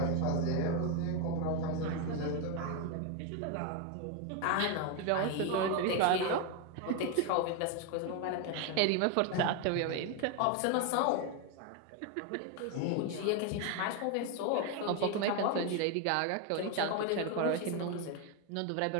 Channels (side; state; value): both; different; correlation 0.02